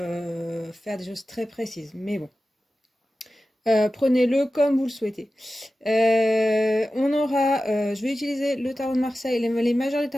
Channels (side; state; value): both; normal; correlation 0.94